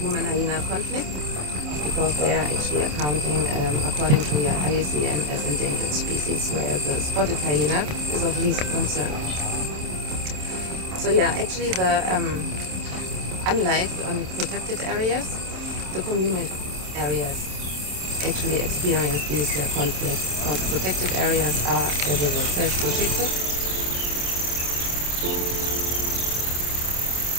conflict because they are actually accounting, according to IUCN, as endangered species, where the spotted hyena is of least concern. So yeah, actually unlike on protected areas, the communal areas actually experience these conflicts because protected areas are, as the word says, protected.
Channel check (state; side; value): late; left; 27 ms